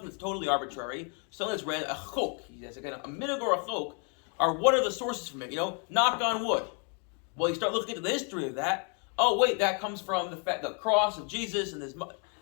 that's totally arbitrary, something that's random, a chok, again, a minig or a chok, are what are the sources from it? Knock on wood. Well, you start looking into the history of that. Oh wait, that comes from the cross of Jesus and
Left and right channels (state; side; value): quieter; right; 39.1 dB